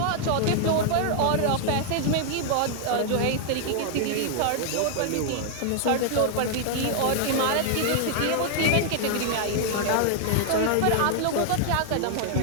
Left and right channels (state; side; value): different; both; correlation 0.00